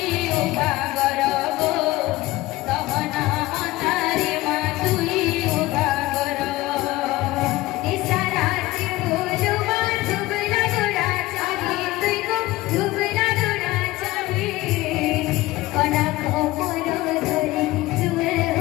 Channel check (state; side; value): quieter; right; 18.5 dB